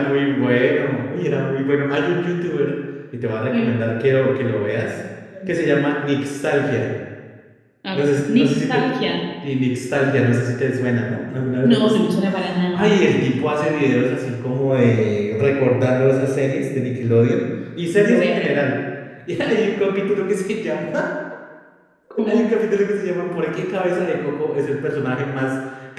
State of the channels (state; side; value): identical; both; correlation 1.00